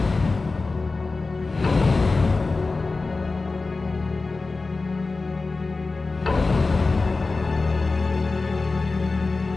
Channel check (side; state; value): right; quieter; 3.7 dB